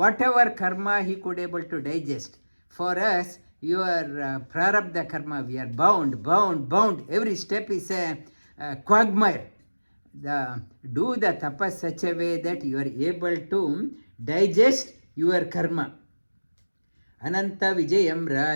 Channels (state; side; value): inverted; both; correlation -1.00